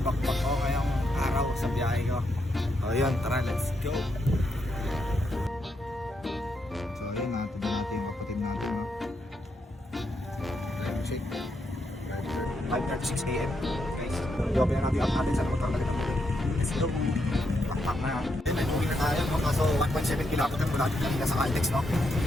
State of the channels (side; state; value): both; normal; correlation 0.80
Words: ko ngayong araw sa biyahe ko. O yun, tara, let's go! So ayun, natin yung kapatid natin. Time check. 5:36 AM. Guys, i-open na natin yung app natin sa motor talaga. Let's go! Backpack na yan. Then, uwi na tayo. Kaso 1.7 kilometer mula dito kanina sa Caltex, no?